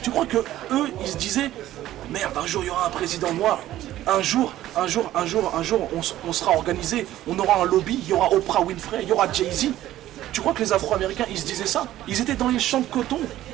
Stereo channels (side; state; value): left; quieter; 13.9 dB